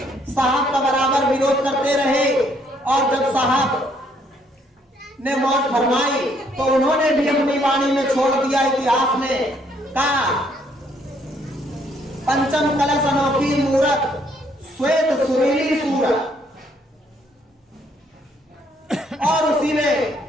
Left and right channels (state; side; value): normal; both; correlation 0.68